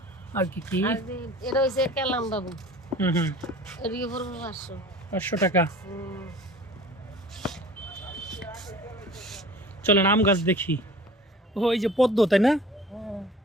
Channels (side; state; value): both; normal; correlation 0.44